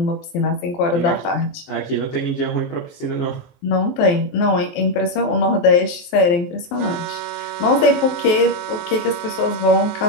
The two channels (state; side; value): late; right; 23 ms